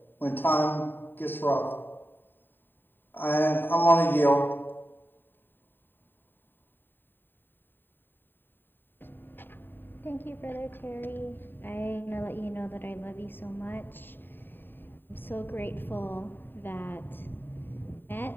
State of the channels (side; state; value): right; late; 0.094 ms